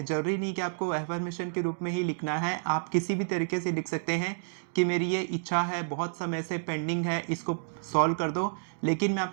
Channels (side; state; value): left; silent; digital silence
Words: जरूरी नहीं कि आपको एफर्मेशन के रूप में ही लिखना है, आप किसी भी तरीके से लिख सकते हैं कि मेरी ये इच्छा है, बहुत समय से पेंडिंग है, इसको सॉल्व कर दो। लेकिन मैं